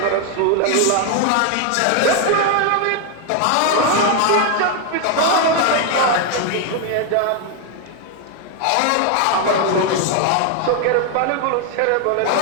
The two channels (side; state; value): both; different; correlation 0.01